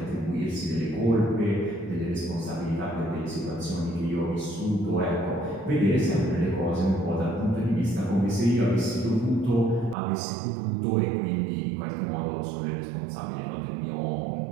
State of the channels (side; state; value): left; drops out; at 10.0 s